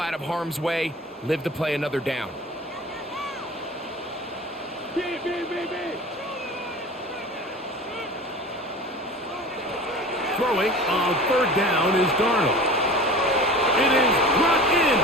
of harm's way, live to play another down. Throwing on 3rd down is Darnold. It is brought in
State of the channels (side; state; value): both; normal; correlation 0.38